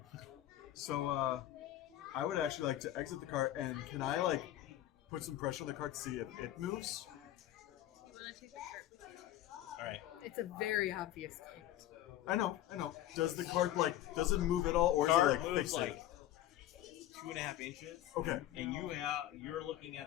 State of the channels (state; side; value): quieter; right; 13.5 dB